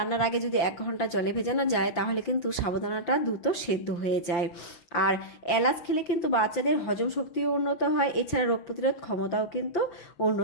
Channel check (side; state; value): right; late; 5.8 ms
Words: আগে যদি 1 ঘন্টা জলে ভেজানো যায় তাহলে কিন্তু সাবুদানাটা দ্রুত সেদ্ধ হয়ে যায়। আর এলাচ খেলে কিন্তু বাচ্চাদের হজম শক্তিও উন্নত হয়, এছাড়া রোগ প্রতিরোধ ক্ষমতাও কিন্তু